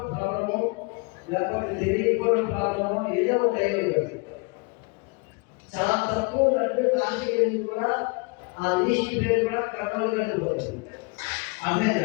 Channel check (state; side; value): quieter; right; 30.6 dB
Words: ప్రాబ్లము లేకపోతే తెలియకపోవడం ప్రాబ్లము ఏదో ఒకటి అయ్యేది. చాలా తక్కువ లడ్డు కాశీ కూడా ఆ లిస్ట్ పేరు కూడా కర్నూలు వెళ్ళిపోతుంది.